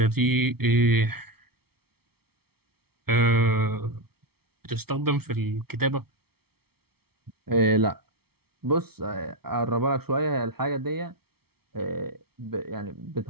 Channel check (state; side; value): late; left; 0.95 ms